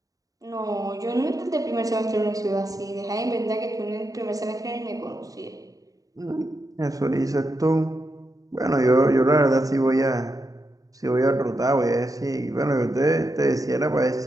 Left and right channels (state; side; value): late; left; 0.17 ms